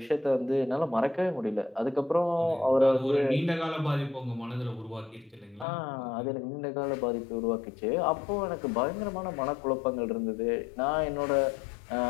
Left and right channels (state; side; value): drops out; right; at 5.7 s